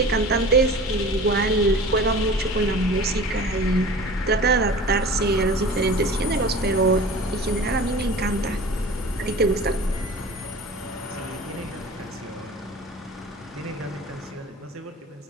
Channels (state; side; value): normal; both; correlation 0.40